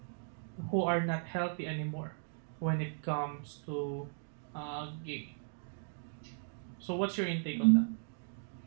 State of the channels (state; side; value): silent; left; digital silence